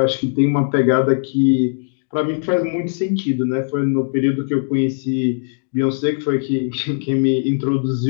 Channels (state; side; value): silent; right; digital silence